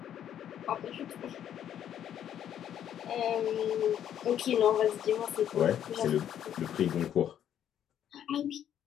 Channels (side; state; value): right; quieter; 10.1 dB